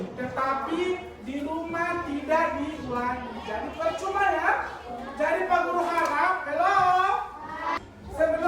tetapi di rumah tidak diulangi. Jadi percuma ya. Jadi Pak Guru harap,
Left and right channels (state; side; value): identical; both; correlation 1.00